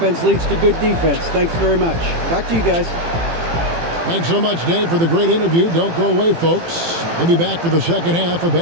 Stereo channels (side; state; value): left; late; 18 ms